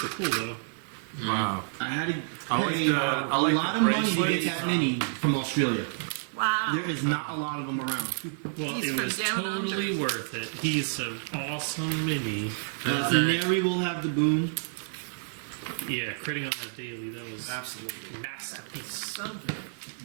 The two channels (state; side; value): silent; left; digital silence